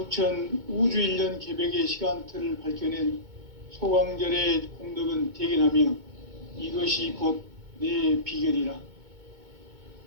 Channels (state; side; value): late; left; 2.2 ms